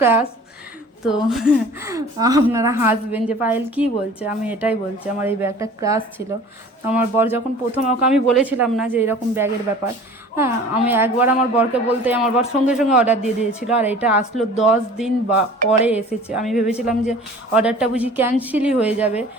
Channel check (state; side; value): normal; both; correlation 0.45